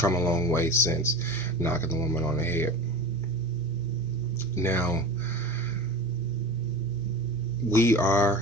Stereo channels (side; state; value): both; normal; correlation 0.32